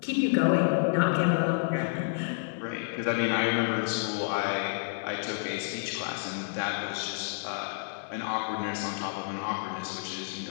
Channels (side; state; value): right; silent; 58 dB below the other